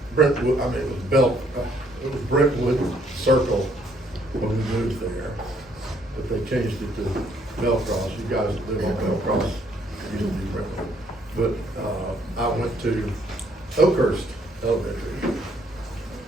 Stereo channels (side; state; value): both; normal; correlation 0.67